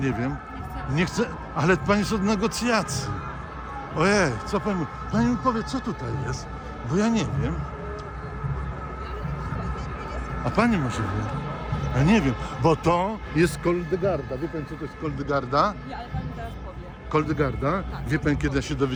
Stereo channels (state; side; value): identical; both; correlation 1.00